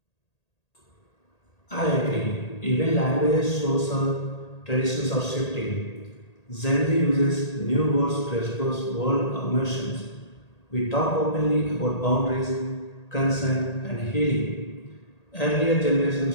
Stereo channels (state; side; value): late; right; 1.8 ms